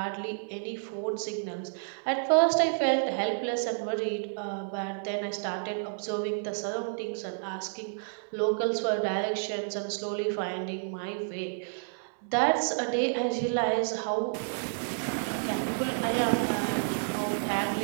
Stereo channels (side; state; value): left; silent; digital silence